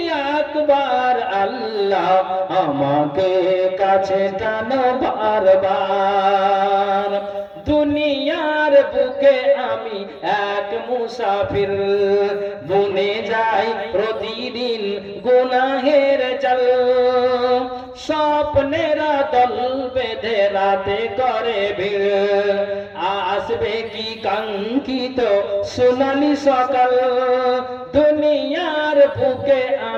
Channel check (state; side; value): identical; both; correlation 1.00